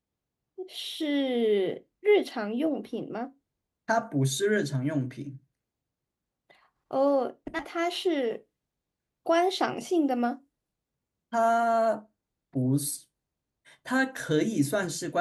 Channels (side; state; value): both; identical; correlation 1.00